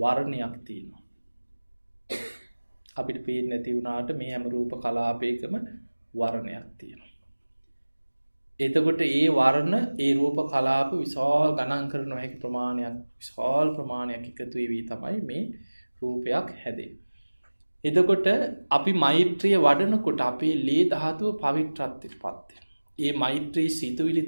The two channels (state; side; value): inverted; both; correlation -1.00